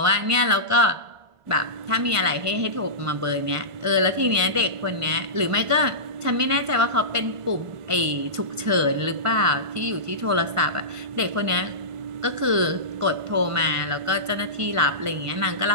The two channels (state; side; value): late; left; 1.5 ms